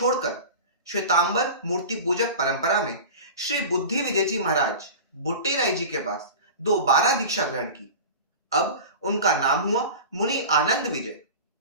श्वेतांबर मूर्ति पूजक परंपरा में श्री बुद्धि विजय जी महाराज बुट्टी राय जी के पास दोबारा दीक्षा ग्रहण की। अब उनका नाम हुआ मुनि आनंद विजय।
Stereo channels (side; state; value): both; inverted; correlation -0.32